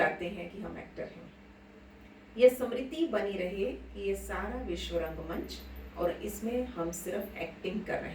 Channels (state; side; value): identical; both; correlation 1.00